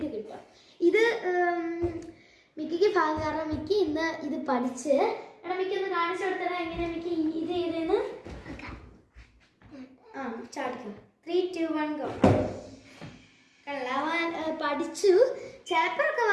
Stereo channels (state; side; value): identical; both; correlation 1.00